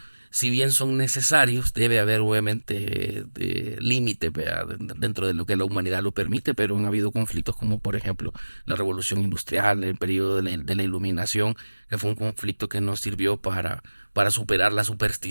si bien son necesarios, debe haber obviamente límites dentro de lo que la humanidad lo permite, pero han habido conflictos como por ejemplo la revolución industrial, el periodo de la iluminación, que fue un conflicto que nos sirvió para superar la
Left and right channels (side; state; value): both; inverted; correlation -1.00